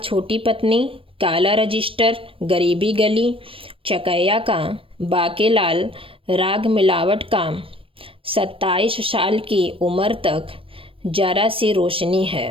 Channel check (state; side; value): late; left; 0.26 ms